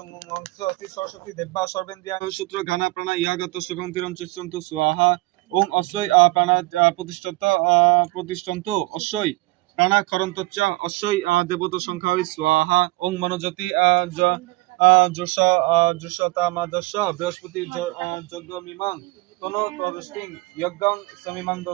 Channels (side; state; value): left; quieter; 21.9 dB